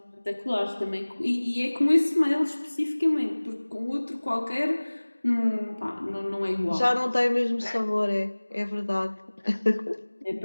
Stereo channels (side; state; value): both; inverted; correlation -1.00